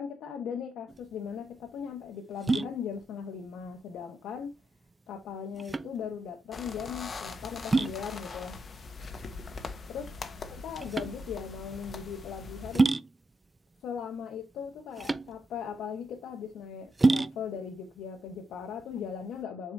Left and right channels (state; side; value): normal; both; correlation 0.82